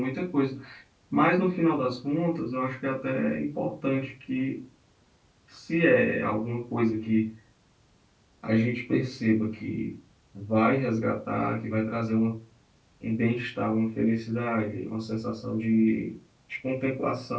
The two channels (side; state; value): both; identical; correlation 1.00